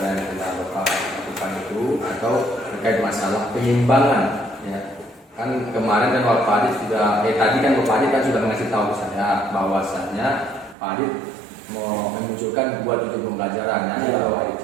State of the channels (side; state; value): left; drops out; at 10.8 s